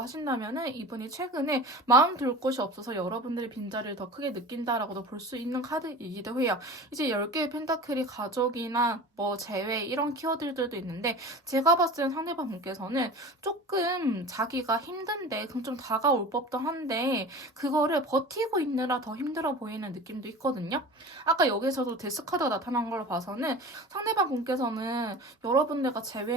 하신다면은 이분이 최근에 마음 둘 곳이 없어서 여러분들의 빈자리를 더 크게 느낀다라고도 볼 수 있는 카드이기도 해요. 이제 10개의 펜타클이 가족이나 뭐 재회 이런 키워드들도 있는데 제가 봤을 때 상대방 분께서는 조금 자기가 힘든데 그럼 좀 다가올 법도 한데 그거를 버티고 있느라 더 힘들어 보이는 느낌도 있거든요. 아까 여기서도 데스카드가 나타난 걸로 봐서는 상대방 분께서는 여러분들과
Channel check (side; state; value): both; normal; correlation 0.35